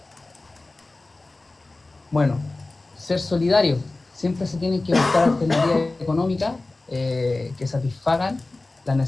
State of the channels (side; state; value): right; quieter; 3.1 dB